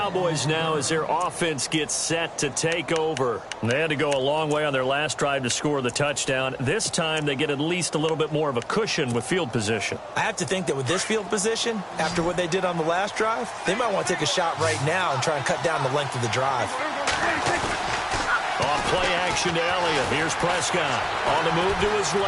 now as their offense gets set to take over. They had to go a long way on their last drive to score the touchdown. This time they get at least a little bit more of a cushion with field position. I have to think that with this field position, after what they did on the last drive, they might want to take a shot right now and try and cut down the length of the drive. On play action to Elliott. Here's Prescott on the move to his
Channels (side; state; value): both; identical; correlation 1.00